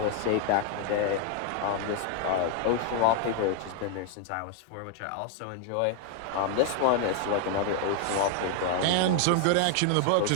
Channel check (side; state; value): both; different; correlation 0.00